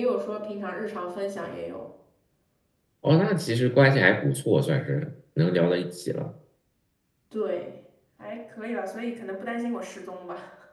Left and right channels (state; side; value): identical; both; correlation 1.00